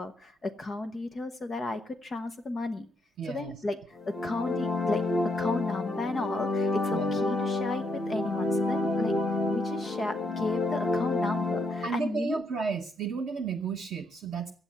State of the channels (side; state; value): both; normal; correlation 0.76